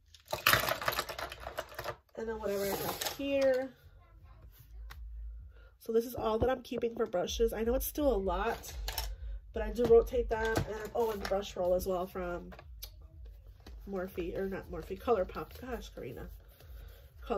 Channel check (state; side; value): identical; both; correlation 1.00